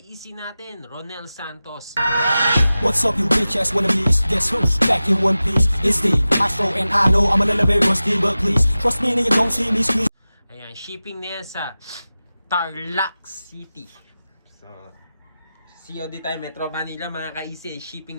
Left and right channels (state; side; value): inverted; both; correlation -0.95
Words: natin, Ronel Santos. What's up, you bitch ass wannabes? Guess who's back in one piece? It's the Astro, and I know I'm a little bit rusty, but please trust me and you don't see me squeeze. Ayan, shipping na yan sa Tarlac City. So, COD tayo, Metro Manila mga ka-easy,